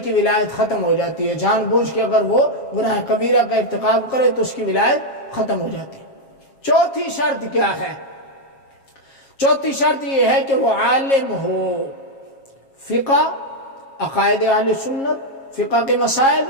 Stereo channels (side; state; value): right; late; 7.4 ms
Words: ولایت ختم ہو جاتی ہے۔ جان بوجھ کے اگر وہ گناہ کبیرہ کا ارتکاب کرے تو اس کی ولایت ختم ہو جاتی ہے۔ چوتھی شرط کیا ہے؟ چوتھی شرط یہ ہے کہ وہ عالم ہو، فقہ، عقائد اہل سنت، فقہ کے مسائل،